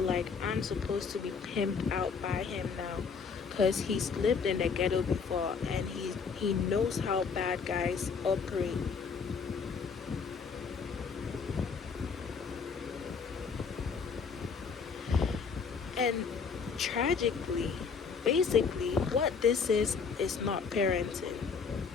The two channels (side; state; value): right; quieter; 5.6 dB